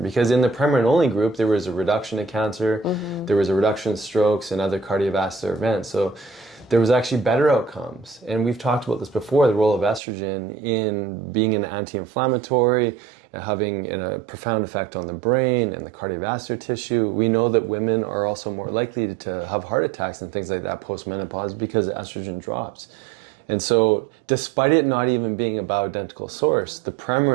in the Premarin only group, there was a reduction in cancer, there was a reduction in strokes and other cardiovascular events. So there was actually better outcomes. And we've talked about this before, the role of estrogen in being an anti-inflammatory, having a profound effect on the brain and the cardiovascular tissue. We know that women are also more likely to have heart attacks and things like that post-menopause because estrogen drops. And so despite it not even being a bioidentical source, the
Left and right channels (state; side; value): drops out; left; at 10.0 s